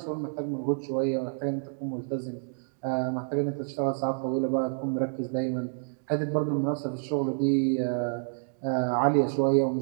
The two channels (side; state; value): left; silent; digital silence